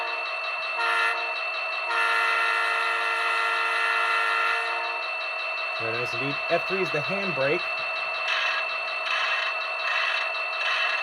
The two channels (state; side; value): identical; both; correlation 1.00